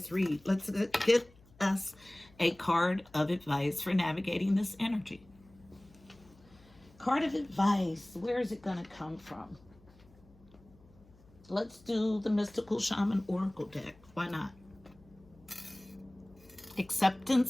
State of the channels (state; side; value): noise; left; hum, 27 dB below the sound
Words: read. Let's get us a card of advice for navigating this energy. Card of advice. Where is it going to come from? Let's do the Mystical Shaman Oracle deck. Why not?